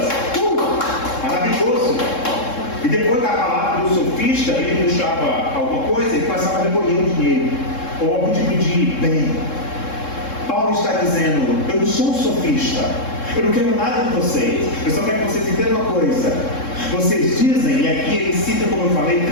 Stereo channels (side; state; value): right; late; 3.7 ms